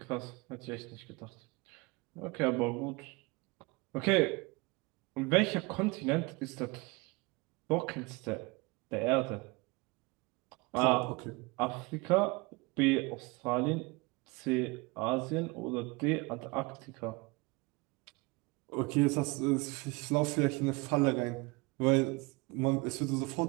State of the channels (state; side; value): quieter; left; 25.9 dB